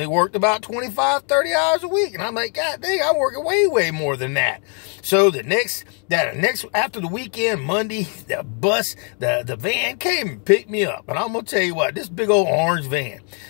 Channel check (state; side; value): quieter; right; 38.6 dB